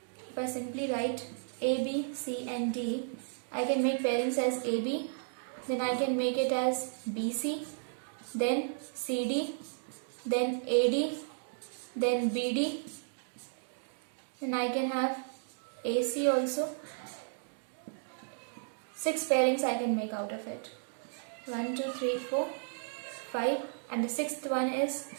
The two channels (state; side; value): silent; left; digital silence